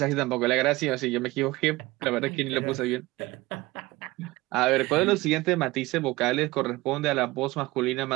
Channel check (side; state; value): left; quieter; 20.2 dB